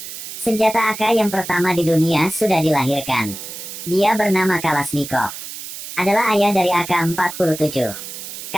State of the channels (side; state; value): right; noise; hiss, 10 dB below the sound